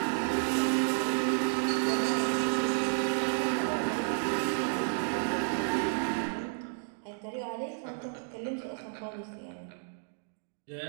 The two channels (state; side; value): silent; left; digital silence